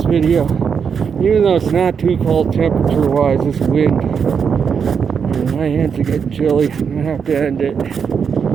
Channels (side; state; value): left; quieter; 6.6 dB